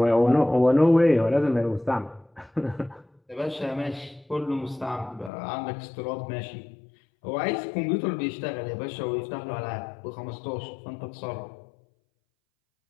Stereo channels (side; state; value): right; drops out; at 5.3 s